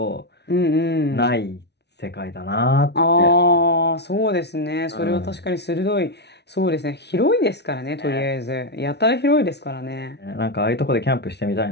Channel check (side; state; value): right; late; 0.49 ms